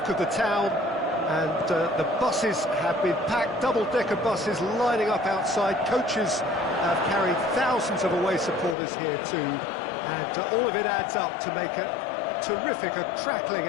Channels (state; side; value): drops out; right; at 8.8 s